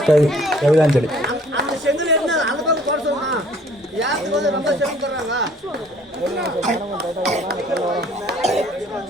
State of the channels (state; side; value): normal; both; correlation 0.57